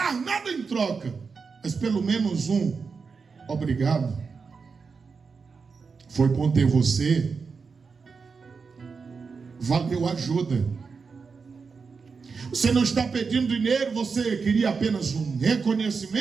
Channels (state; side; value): quieter; left; 5.1 dB